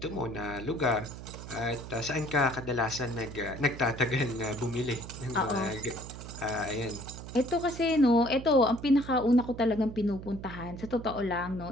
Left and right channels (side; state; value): right; noise; hum, 12 dB below the sound